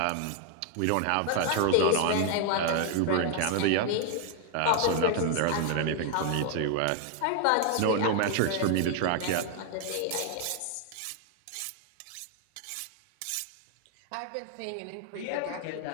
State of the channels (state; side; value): different; both; correlation 0.00